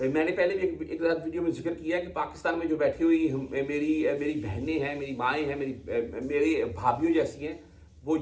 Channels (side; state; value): both; identical; correlation 1.00